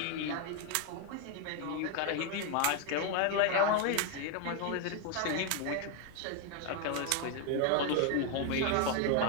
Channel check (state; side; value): different; both; correlation 0.01